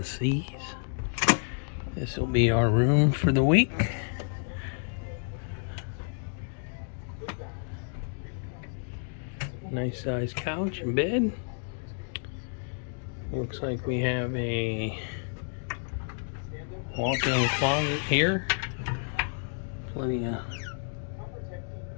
Seas. This will be our room for the week. Nice size couch and bed. Looks like we have a walk-in closet here. Plenty of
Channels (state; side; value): silent; right; 58 dB below the other